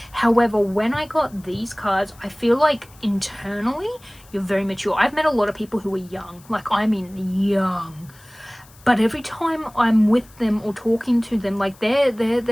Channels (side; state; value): left; noise; hiss, 26 dB below the sound